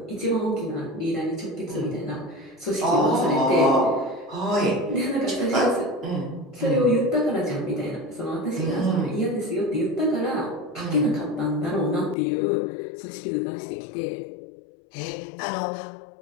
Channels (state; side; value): drops out; right; at 12.2 s